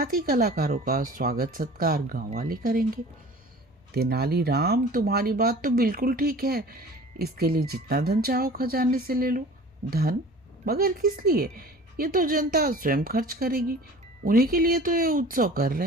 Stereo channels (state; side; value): normal; both; correlation 0.43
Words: ही कलाकारों का स्वागत सत्कार गांव वाले करेंगे। तेनालीराम, तुम्हारी बात तो बिल्कुल ठीक है। इसके लिए जितना धन चाहो खजाने से ले लो। धन? मगर किस लिए? ये तो जनता स्वयं खर्च करेगी। उन्हीं के लिए तो ये उत्सव कर